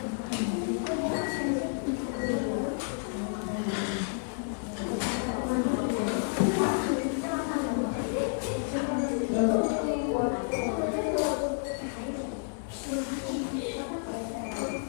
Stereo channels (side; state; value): right; silent; 58 dB below the other